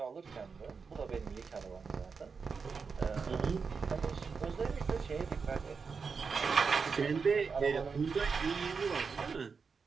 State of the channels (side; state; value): left; quieter; 5.3 dB